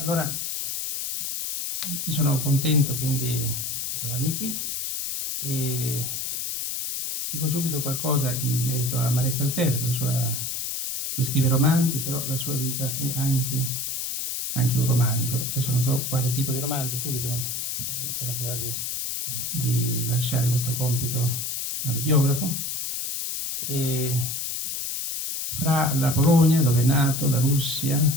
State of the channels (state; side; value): noise; left; hiss, 3 dB below the sound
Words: io sono contento quindi di trovarmi qui e dico subito qualcosa in merito a Marek Alter. Lui scrive romanzi, però la sua vita è anche un romanzo. Adesso non so quale tipo di romanzo, subito si tratterà di lasciare questo compito al biografo. E fra la Polonia, dove è nato, la Russia,